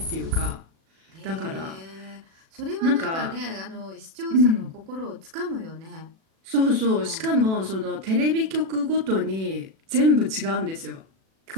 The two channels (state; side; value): late; left; 37 ms